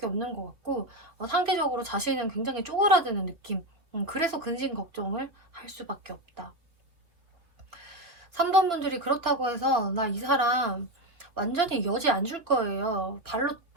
없는 것 같고, 상대적으로 자신은 굉장히 쪼그라드는 느낌. 그래서 근심 걱정을 할 수밖에 없다. 3번 분들이 그렇다고 해서 나 이 사람 완전히 여지 안 줄 거예요, 발로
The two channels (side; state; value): left; late; 3.0 ms